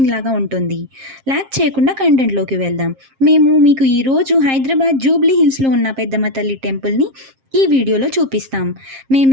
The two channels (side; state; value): left; late; 7.5 ms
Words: లాగా ఉంటుంది. లైక్ చేయకుండా కంటెంట్లోకి వెళ్దాం. మేము మీకు ఈరోజు హైదరాబాద్ జూబ్లీ హిల్స్లో ఉన్న పెద్దమ్మ తల్లి టెంపుల్ని ఈ వీడియోలో చూపిస్తాం.